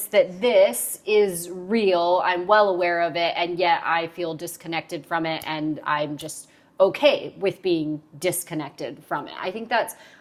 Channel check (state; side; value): identical; both; correlation 1.00